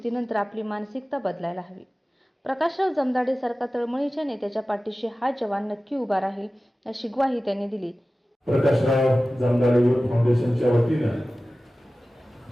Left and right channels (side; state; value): both; normal; correlation 0.96